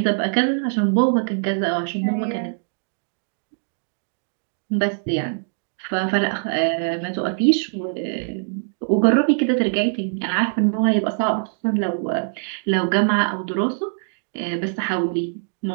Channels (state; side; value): silent; left; digital silence